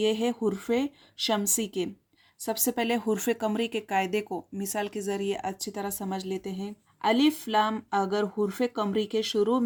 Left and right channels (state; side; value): identical; both; correlation 1.00